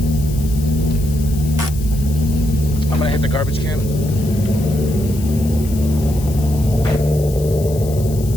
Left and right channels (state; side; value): noise; left; hiss, 16 dB below the sound